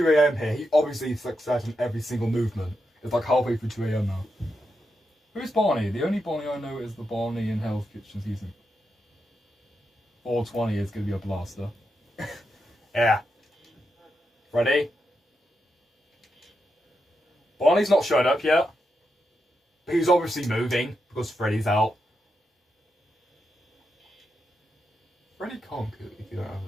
AM here. He obviously success in every single movement. It's like halfway through 2 AM now. Who's Barney? The only Barney I know is the Barney in Hell's Kitchen season. 420 is going to be a blaster. Yeah. Ready? Barney's not showed up yet. But he's obviously moving because Freddy's out. Freddy can't cook if you don't have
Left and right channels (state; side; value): normal; both; correlation 0.85